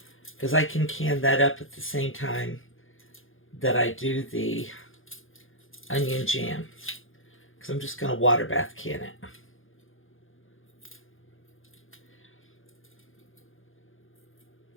Because I can can that up at the same time that I do the onion jam. Because I'm just going to water bath can it.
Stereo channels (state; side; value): late; right; 0.59 ms